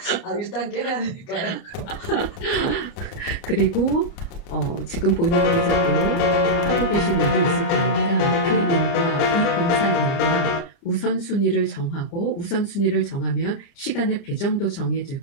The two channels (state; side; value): late; right; 30 ms